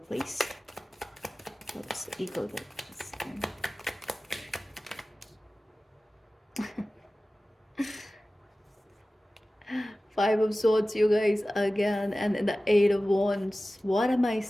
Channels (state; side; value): normal; both; correlation 0.96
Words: What's the eagle? Five of Swords, you guys, again, and the Eight of Wands. What am I